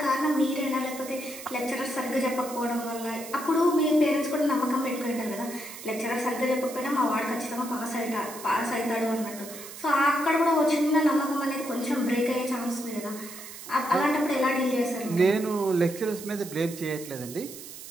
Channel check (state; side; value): noise; right; hiss, 13 dB below the sound